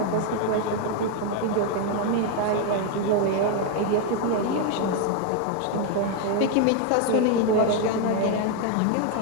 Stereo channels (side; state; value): both; different; correlation 0.01